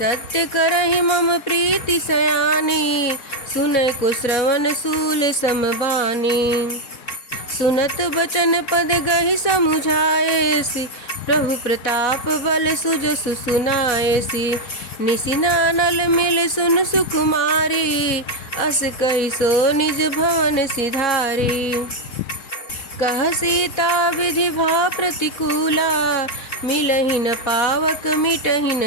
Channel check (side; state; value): right; late; 3.7 ms